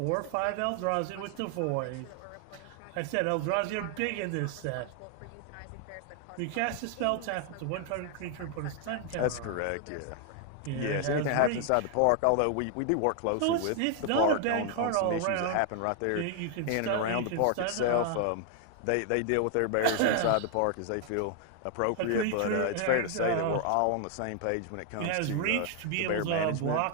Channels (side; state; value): both; different; correlation 0.00